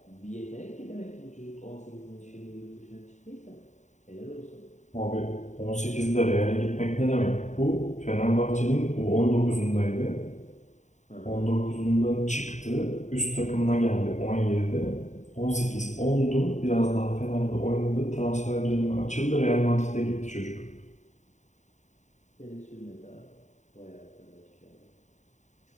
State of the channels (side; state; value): right; late; 0.34 ms